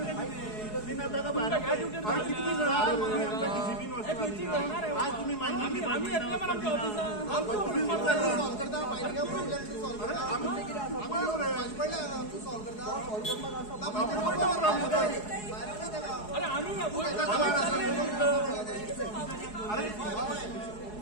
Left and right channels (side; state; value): right; late; 4.7 ms